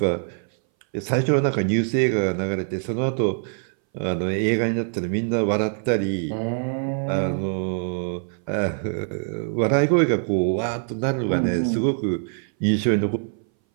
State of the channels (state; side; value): silent; left; 60 dB below the other